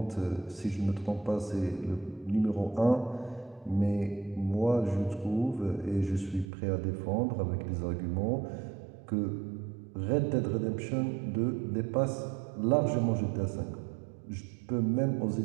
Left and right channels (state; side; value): drops out; left; at 6.5 s